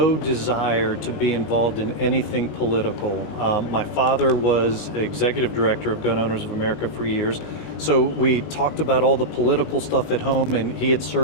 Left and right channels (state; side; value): late; right; 19 ms